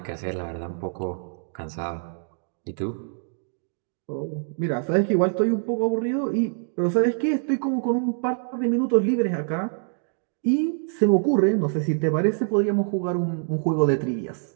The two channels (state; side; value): silent; left; 62 dB below the other